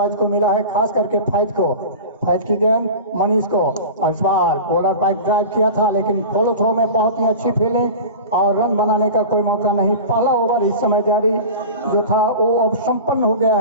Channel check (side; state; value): both; inverted; correlation -0.32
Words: को मिला है, खास करके फैज को। फैज की गेंद मनीष को, और इस बार बॉलर बाइक ड्राइव किया था, लेकिन फॉलो थ्रो में बहुत ही अच्छी फील्डिंग और रन बनाने का कोई मौका नहीं। पहला ओवर इस समय जारी जो था वो अब संपन्न हो गया